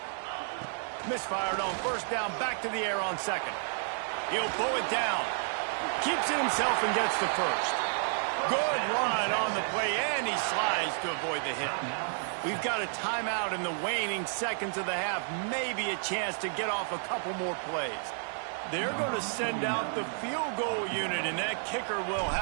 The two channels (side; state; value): left; silent; 57 dB below the other